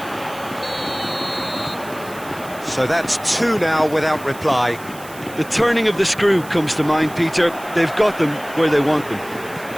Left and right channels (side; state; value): right; noise; hiss, 19 dB below the sound